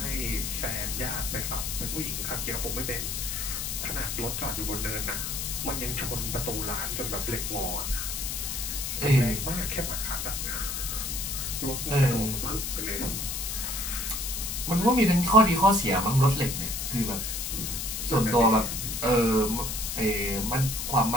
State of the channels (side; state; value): left; noise; hiss, 3 dB below the sound